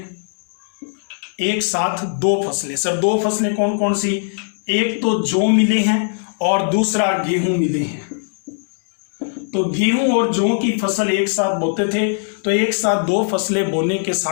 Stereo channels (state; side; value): silent; right; digital silence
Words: एक साथ दो फसलें, सर दो फसलें कौन कौन सी? एक तो जौ मिले हैं और दूसरा गेहूं मिले हैं। तो गेहूं और जौ की फसल एक साथ बोते थे, तो एक साथ दो फसलें बोने के